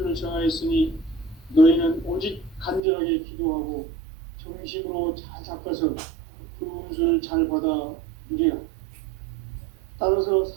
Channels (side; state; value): left; drops out; at 2.8 s